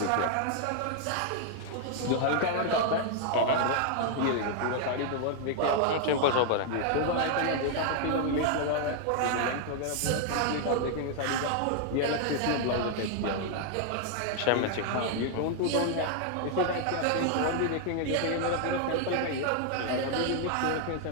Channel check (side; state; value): both; different; correlation 0.00